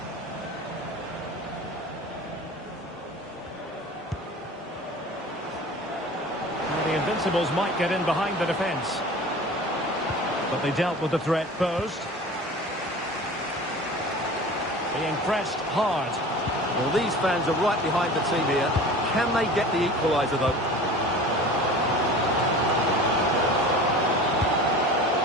Now the Invincibles might get in behind the defence. But they dealt with the threat posed. Being pressed hard. Well, these fans are right behind the team here. Can they get the equaliser, though?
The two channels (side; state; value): both; normal; correlation 0.39